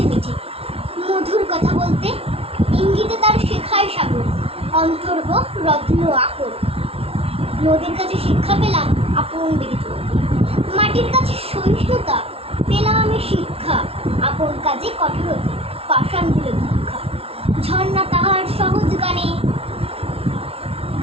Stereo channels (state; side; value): late; left; 0.29 ms